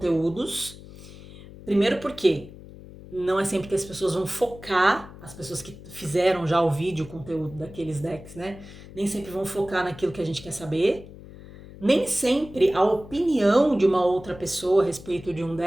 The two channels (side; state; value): left; noise; hum, 17 dB below the sound